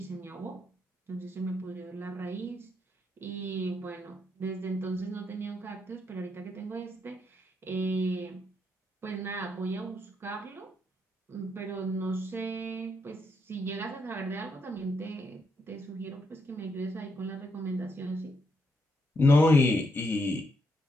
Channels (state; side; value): normal; both; correlation 0.78